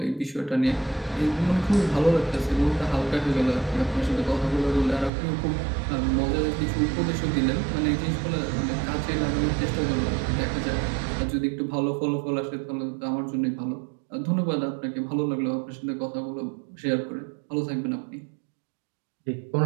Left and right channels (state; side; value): drops out; left; at 5.1 s